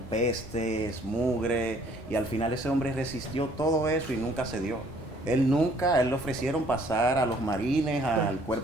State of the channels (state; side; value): normal; both; correlation 0.60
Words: mugre, y al final ese hombre resistió todo eso y nunca cedió. Él le ofrecieron pasar a los marines, al